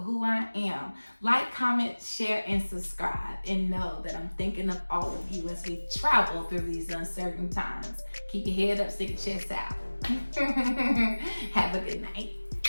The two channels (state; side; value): inverted; both; correlation -1.00